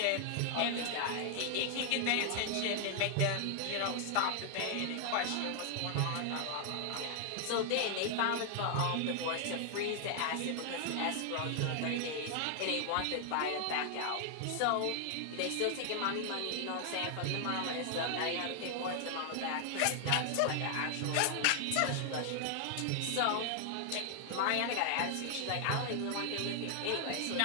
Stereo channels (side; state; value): both; different; correlation 0.00